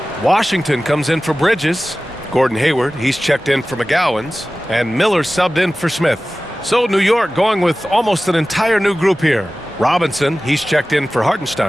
Washington comes in for Bridges. Gordon Hayward, he's checked in for McGowan's. And Miller subbed in for Smith. So New York going with almost an entire new group here. Robinson, he's checked in for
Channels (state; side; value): normal; both; correlation 0.96